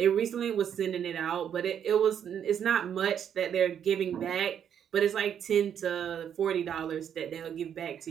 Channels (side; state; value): left; quieter; 8.8 dB